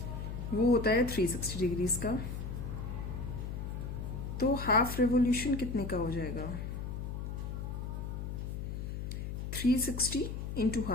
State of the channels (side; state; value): left; noise; hum, 5 dB below the sound